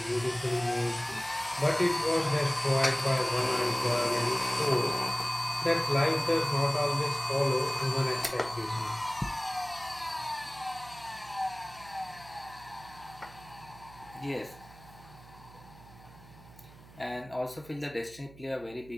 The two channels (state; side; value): noise; right; hum, 21 dB below the sound